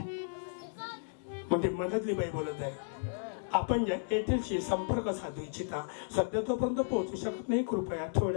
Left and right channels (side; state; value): right; silent; digital silence